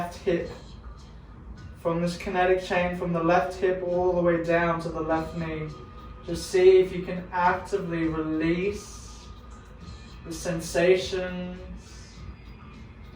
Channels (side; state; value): both; identical; correlation 1.00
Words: hip. From this kinetic chain from the left hip all the way down to the left knee. Just see if you can actively release the sensations